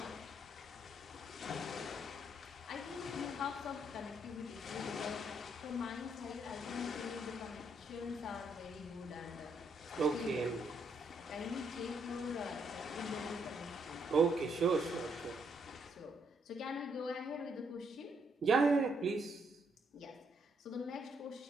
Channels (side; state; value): both; normal; correlation 0.74